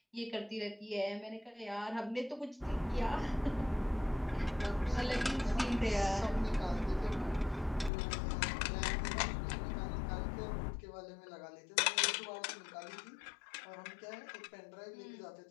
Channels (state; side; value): drops out; right; at 7.9 s